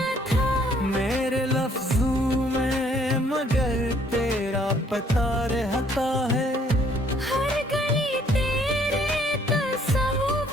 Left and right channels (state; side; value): normal; both; correlation 0.63